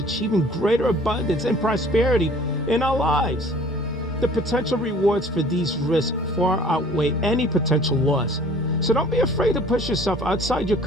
greater abundance and prosperity in our lives. The potential rewards for these risks far outweigh any potential loss. So don't be afraid to push yourself outside your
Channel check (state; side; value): normal; both; correlation 0.51